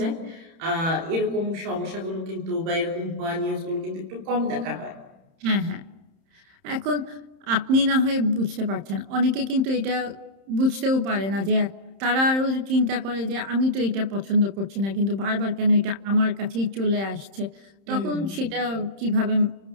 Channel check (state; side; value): late; left; 31 ms